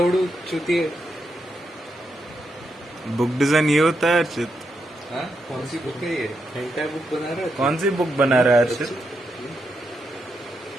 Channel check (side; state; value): both; normal; correlation 0.83